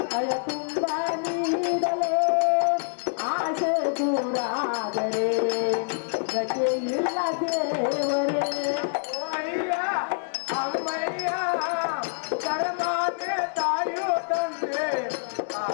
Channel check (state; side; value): silent; right; digital silence